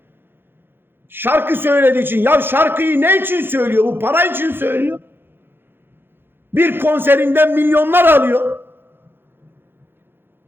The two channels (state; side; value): late; left; 0.10 ms